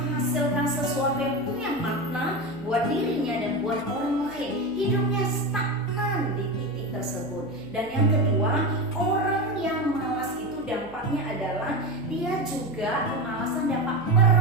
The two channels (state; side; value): noise; right; hum, 20 dB below the sound